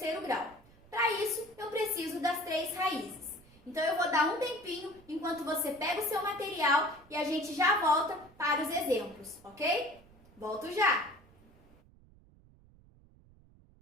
grau. Para isso, eu preciso das 3 raízes. Então, eu vou dar um tempinho enquanto você pega o seu material e a gente já volta para os exemplos, ok? Volto já!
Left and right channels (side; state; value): right; noise; rumble, 26 dB below the sound